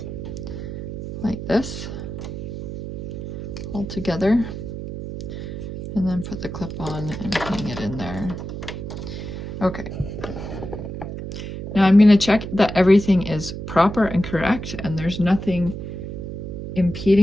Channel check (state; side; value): noise; right; hum, 7 dB below the sound